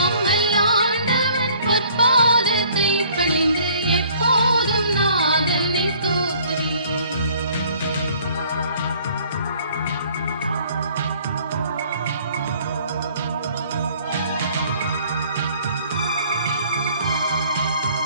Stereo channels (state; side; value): inverted; both; correlation -0.57